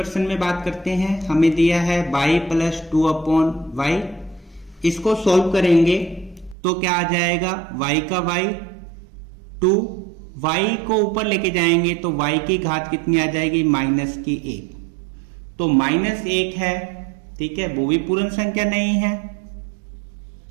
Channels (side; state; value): left; drops out; at 6.6 s